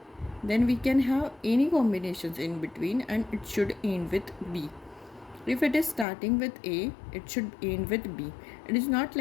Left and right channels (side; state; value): right; drops out; at 6.1 s